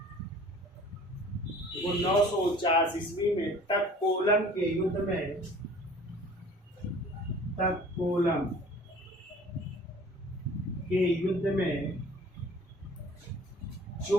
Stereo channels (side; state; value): both; normal; correlation 0.48